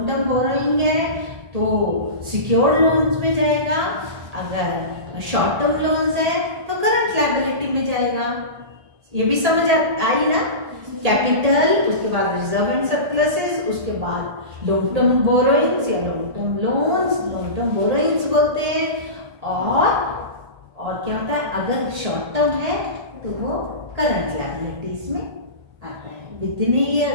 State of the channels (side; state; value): left; late; 1.8 ms